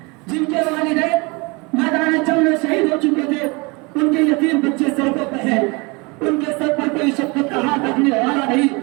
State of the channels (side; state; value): left; quieter; 27.7 dB